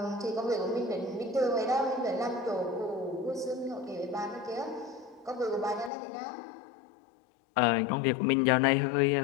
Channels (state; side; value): drops out; right; at 5.9 s